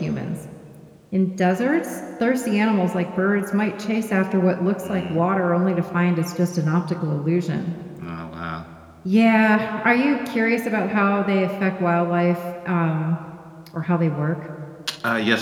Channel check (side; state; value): both; identical; correlation 1.00